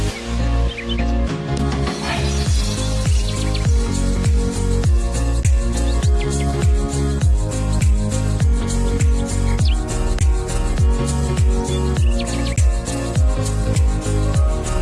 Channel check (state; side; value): identical; both; correlation 1.00